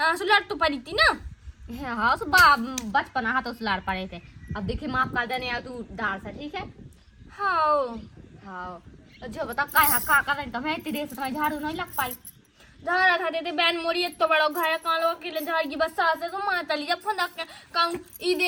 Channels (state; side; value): identical; both; correlation 1.00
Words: सुलट तो पड़ी थी ना। हाँ बचपन हाथ तो सुलार पड़े थे। अब देखिए माफ कर देने तू डाल से, ठीक है। हाँ हाँ जो बता का कर रही तुम्हें इतनी देर से तुम्हें झाड़ू नहीं लग पाई। झाड़ा था देते बैन मोरी तो बड़ा घर कान लोग अकेले झाड़ की बस सास है तो माता ली जब फोन कहूँ ई